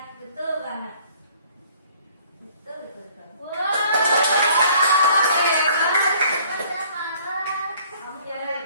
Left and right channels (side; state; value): both; inverted; correlation -0.57